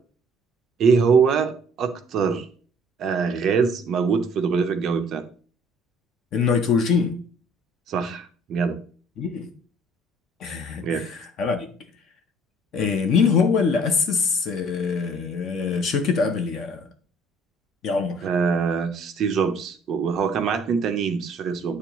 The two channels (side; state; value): both; normal; correlation 0.56